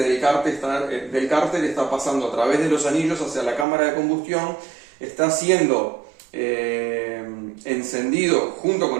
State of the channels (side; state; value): left; drops out; at 3.7 s